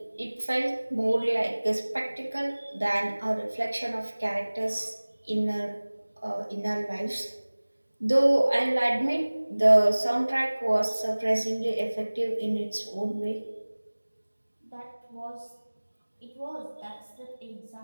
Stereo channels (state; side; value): inverted; both; correlation -1.00